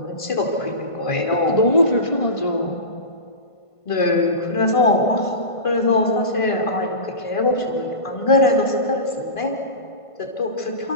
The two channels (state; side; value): late; right; 1.5 ms